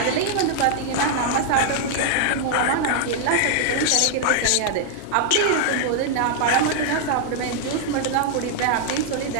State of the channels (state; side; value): different; both; correlation 0.00